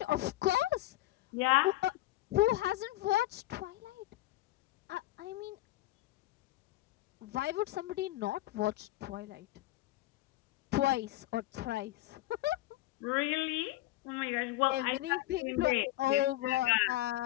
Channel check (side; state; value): right; quieter; 16.8 dB